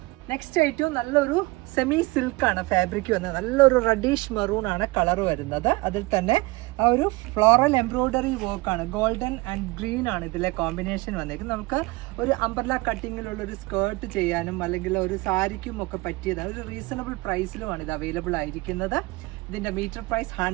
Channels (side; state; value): left; quieter; 23.4 dB